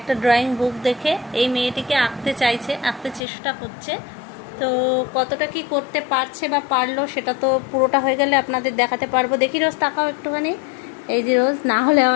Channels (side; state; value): right; drops out; at 3.2 s